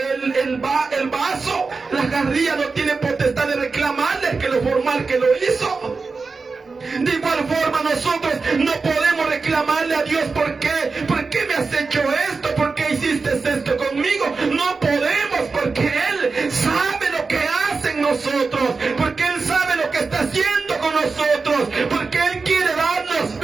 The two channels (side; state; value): left; quieter; 4.3 dB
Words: El vaso, la jarrilla, no tiene potestad de reclamarle que lo formal que lo hizo. De igual forma, nosotros no podemos reclamarle a Dios: ¿por qué me has hecho esto? ¿Por qué hiciste esto conmigo? No podemos, porque Él sabe lo que hace en nosotros, porque Él sabe lo que está haciendo con nosotros, porque Él quiere darnos